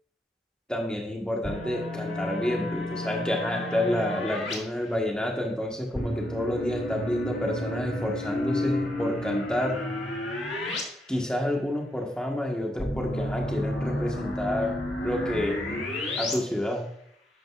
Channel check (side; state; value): both; normal; correlation 0.79